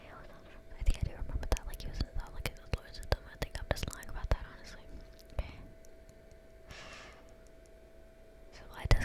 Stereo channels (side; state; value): both; identical; correlation 1.00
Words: think I do remember that. Like, he was in the like his lawyers and them. I think I'm just lying about that, honestly. Okay. So why